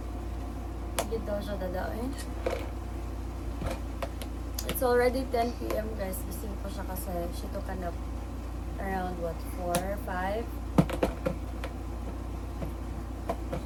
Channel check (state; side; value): identical; both; correlation 1.00